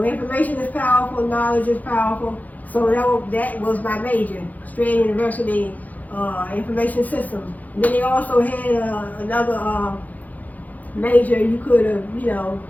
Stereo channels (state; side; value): late; right; 0.080 ms